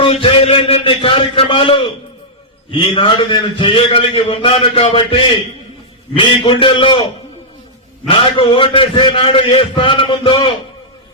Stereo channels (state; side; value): normal; both; correlation -0.10